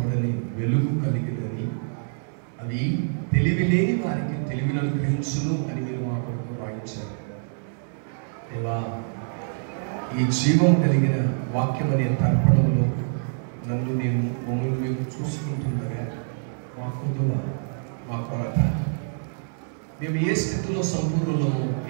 వెలుగు కలిగినని, అది తెలివి లేని వారికి తెలివిని అనుగ్రహించును అని మీరు మా కొరకు రాయించారు. దేవా, ఈ జీవం కలిగిన వాక్యం అనే తర్పణంలో నన్ను నేను మమ్మల్ని మేము చూసుకుంటుండగా మా కొదువ, మా కొరత, మేము ఏ స్థితిలో సంపూర్ణులమో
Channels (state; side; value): silent; left; 61 dB below the other